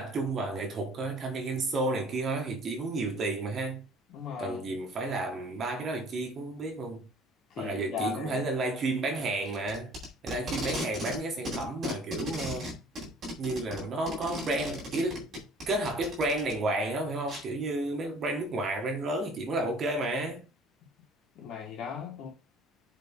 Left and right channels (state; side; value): normal; both; correlation 0.51